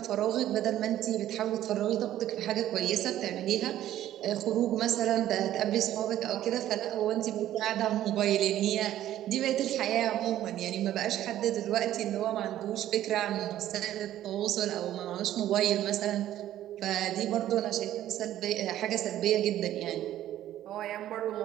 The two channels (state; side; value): quieter; left; 12.6 dB